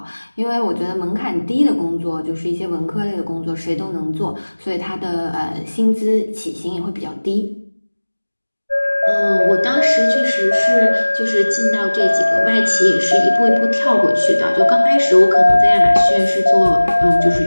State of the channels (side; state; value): both; inverted; correlation -1.00